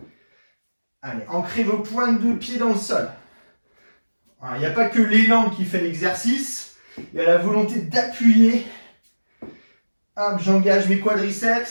Allez, ancrez vos pointes de pied dans le sol. Il n'y a pas que l'élan qui fait l'exercice. Il y a la volonté d'appuyer. Hop, j'engage mes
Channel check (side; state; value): both; inverted; correlation -1.00